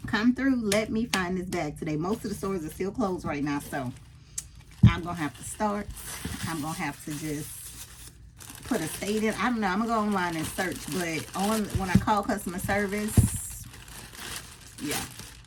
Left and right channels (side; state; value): both; identical; correlation 1.00